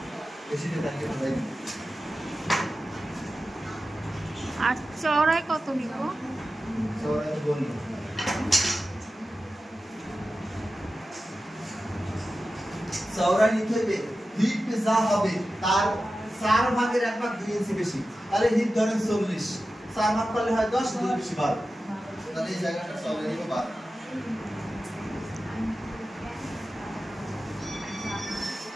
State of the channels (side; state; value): both; normal; correlation 0.93